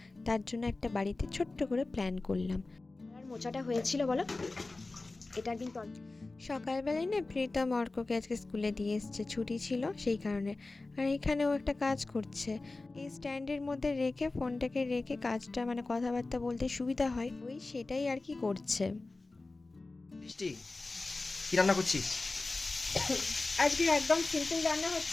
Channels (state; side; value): quieter; right; 3.3 dB